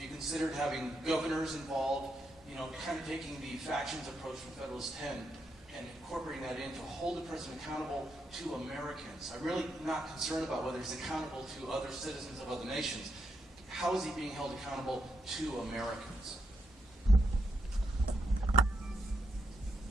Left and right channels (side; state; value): both; normal; correlation 0.81